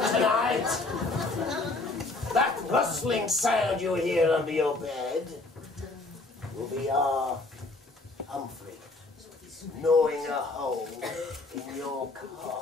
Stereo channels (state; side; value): quieter; right; 3.2 dB